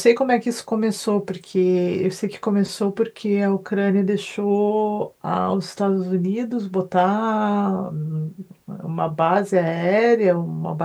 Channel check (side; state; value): both; identical; correlation 1.00